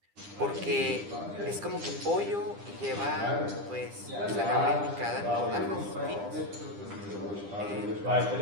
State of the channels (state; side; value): late; left; 10 ms